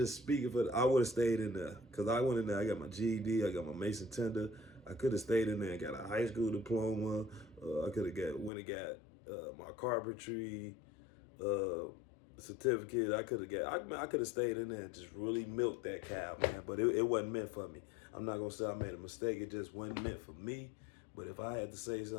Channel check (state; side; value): drops out; right; at 8.5 s